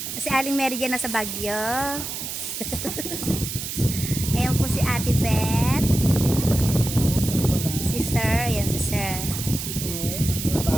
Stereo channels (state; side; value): noise; right; hiss, 6 dB below the sound